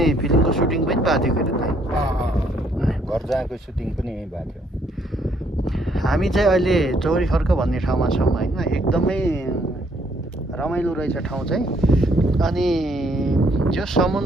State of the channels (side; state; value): both; normal; correlation 0.68